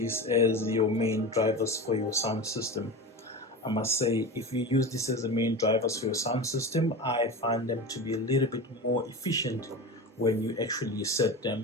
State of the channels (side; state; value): both; normal; correlation 0.27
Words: as your main drivers for your sound system. I must say, if you use this as the main drivers for your sound system, I find them to be a little bit more efficient when you actually set